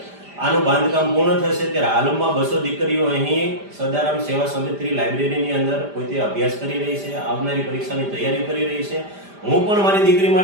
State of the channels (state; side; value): late; left; 5.0 ms